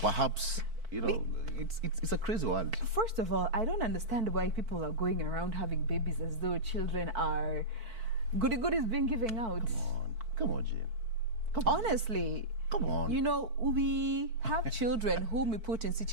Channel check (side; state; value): left; late; 4.5 ms